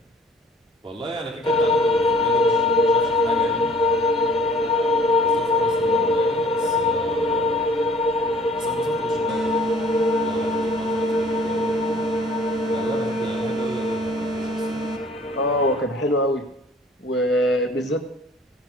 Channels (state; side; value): normal; both; correlation 0.54